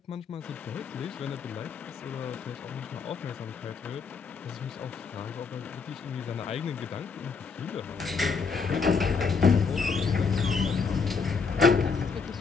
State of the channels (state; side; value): quieter; right; 5.2 dB